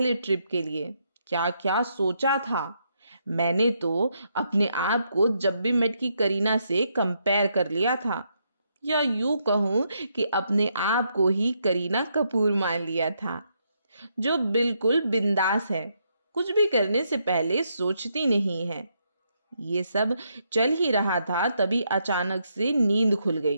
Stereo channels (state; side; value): inverted; both; correlation -0.77